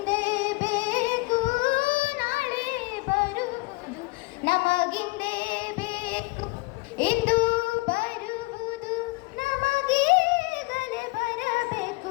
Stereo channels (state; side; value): quieter; right; 24.0 dB